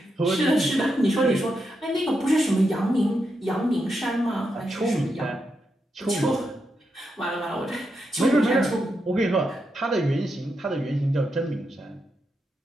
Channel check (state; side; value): normal; both; correlation 0.84